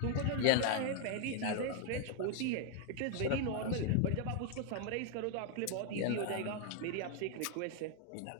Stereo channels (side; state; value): both; different; correlation 0.00